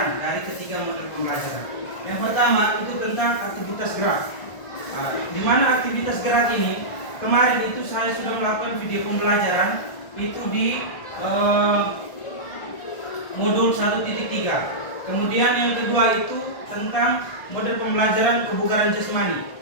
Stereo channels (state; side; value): late; right; 1.5 ms